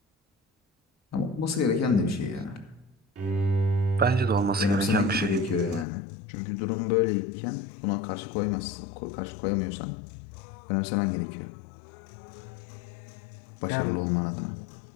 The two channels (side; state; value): right; drops out; at 5.9 s